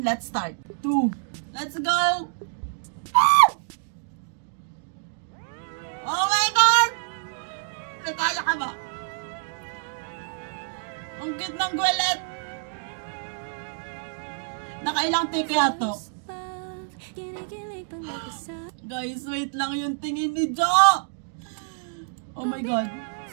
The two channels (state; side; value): silent; left; digital silence